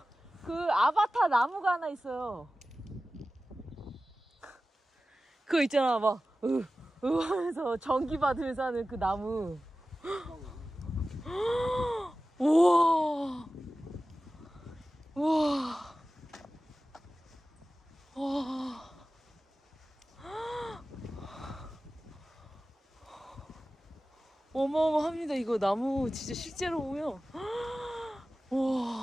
그 아바타 나무가 하나 있어요. 그거 있잖아, 막 하면서 전기 받으면서 하는 그 나무. 우와, 우와, 와. 어마어마합니다. 이거 나무 진짜 실제로 보면.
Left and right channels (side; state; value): both; normal; correlation 0.96